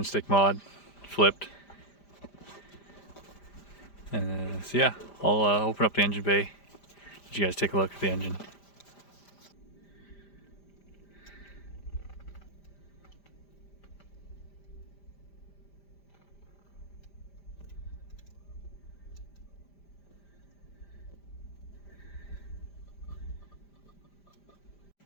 stick mod flipped. And so yeah, I'll open up the engine bay, let you guys take a look at the engine.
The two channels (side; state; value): right; late; 5.0 ms